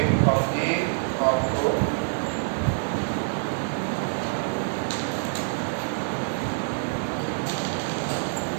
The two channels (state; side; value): silent; left; digital silence